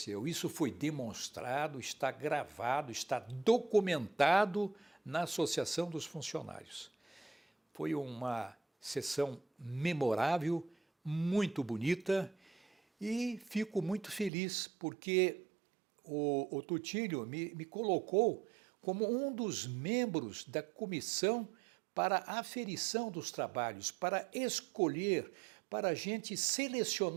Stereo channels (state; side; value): drops out; left; at 14.3 s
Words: isso foi demonstrado, está gravado, está documentado na Associação dos Funcionários. Foi uma sessão memorável, muito bonita, e fico muito feliz porque o Tutílio me colocou como um dos membros da comissão para a aferição dos trabalhos, para escolher, para a gente